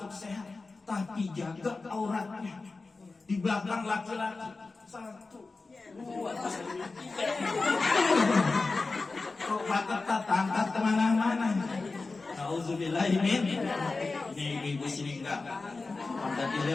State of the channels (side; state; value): right; quieter; 3.8 dB